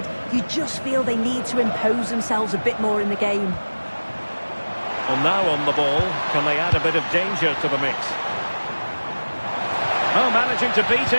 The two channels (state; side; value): inverted; both; correlation -1.00